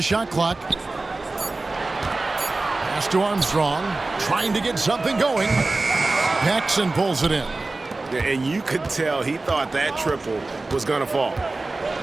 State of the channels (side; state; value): left; quieter; 3.3 dB